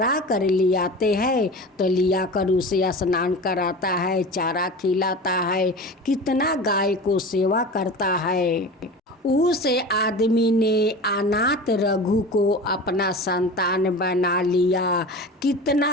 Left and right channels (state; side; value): normal; both; correlation 0.33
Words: कर ले आते हैं तो लिया कर उसे स्नान कराता है, चारा खिलाता है, कितना गाय को सेवा करता है। उस आदमी ने अनाथ रघु को अपना संतान बना लिया,